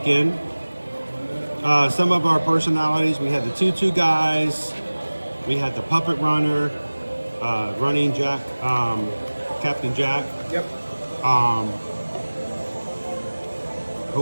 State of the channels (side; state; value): both; inverted; correlation -1.00